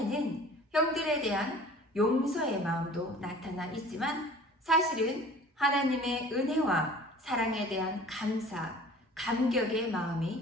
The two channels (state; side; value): normal; both; correlation 0.46